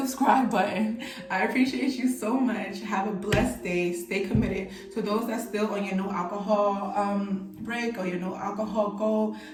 button. I appreciate you so much. Have a blessed day. Stay committed. To those that's still on your no alcohol break or your no alcohol goal,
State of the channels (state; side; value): identical; both; correlation 1.00